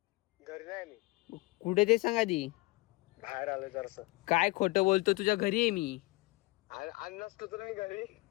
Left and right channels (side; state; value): right; quieter; 22.5 dB